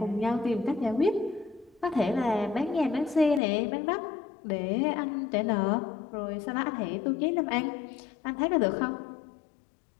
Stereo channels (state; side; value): drops out; right; at 3.4 s